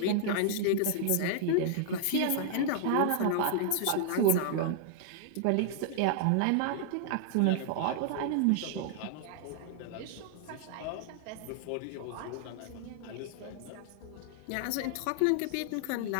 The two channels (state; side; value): different; both; correlation -0.01